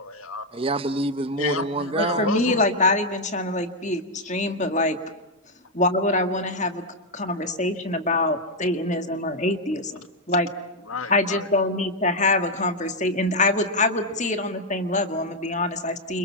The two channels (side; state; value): both; normal; correlation 0.01